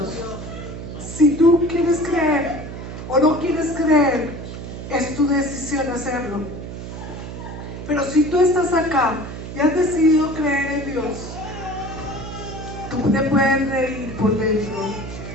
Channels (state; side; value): noise; right; hum, 9 dB below the sound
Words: Si tú quieres creer o no quieres creer, es tu decisión hacerlo. Pero si tú estás acá y has decidido creer en Dios, tú te puedes reír por dentro